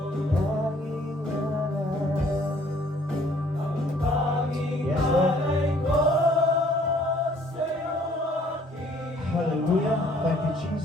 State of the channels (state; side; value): normal; both; correlation 0.60